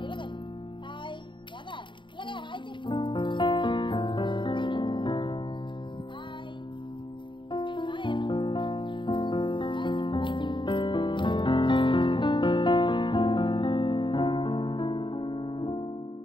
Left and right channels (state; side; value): late; right; 0.23 ms